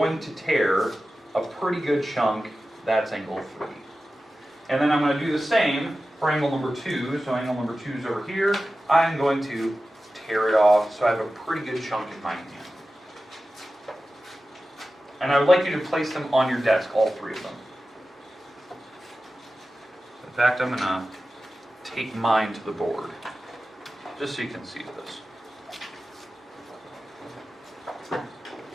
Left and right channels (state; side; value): normal; both; correlation 0.94